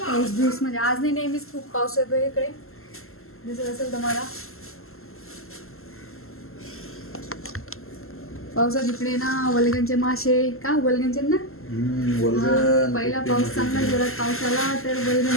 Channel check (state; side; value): late; right; 0.62 ms